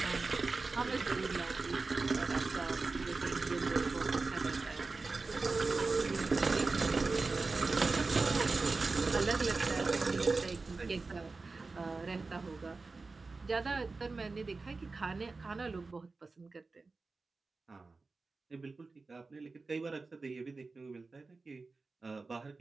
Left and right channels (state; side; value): quieter; left; 3.9 dB